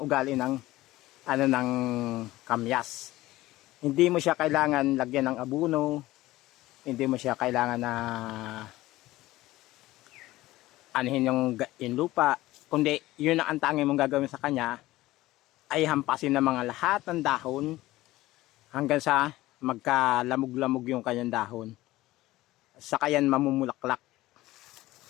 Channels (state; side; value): quieter; right; 17.3 dB